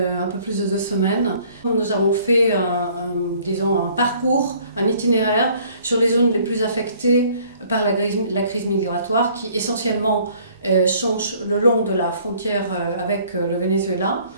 peu plus de 2 semaines. Nous avons fait disons, un parcours, un itinéraire sur les zones les plus affectées par la crise migratoire qui essentiellement sont le long de la frontière avec le Venezuela.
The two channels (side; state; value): both; inverted; correlation -0.58